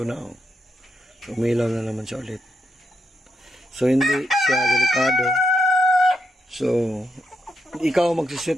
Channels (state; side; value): normal; both; correlation 0.81